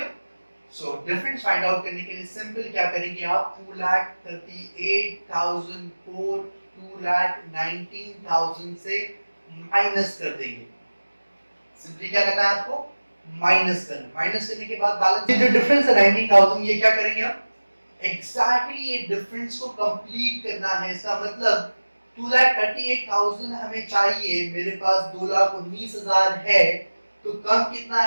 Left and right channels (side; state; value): both; inverted; correlation -1.00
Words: So difference find out करने के लिए सिंपल क्या करेंगे आप, 2,38,000 को 2,19,000 से माइनस कर देंगे. सिंपली क्या करना है आपको, माइनस करना, माइनस करने के बाद बैलेंस, ये जो डिफरेंस है 19,000, ये क्या करेंगे आप एग्जैक्टली ये डिफरेंस को कंप्लीट करना है। इसका मतलब 2,38,000 हमें चाहिए, मेरे पास 2,19,000 है, तो कम कितना